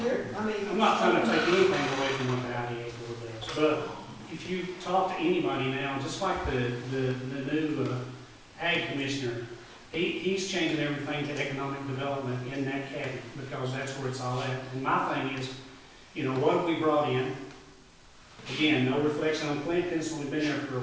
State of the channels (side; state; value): both; identical; correlation 1.00